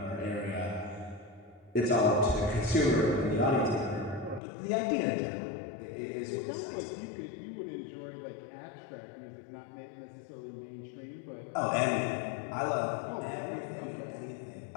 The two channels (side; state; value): right; drops out; at 4.4 s